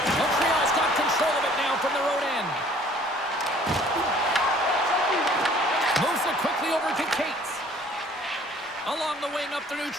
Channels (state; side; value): normal; both; correlation 0.55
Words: Montreal's got control of it now from their own end. Moves it quickly over to Cates. Along the wing up the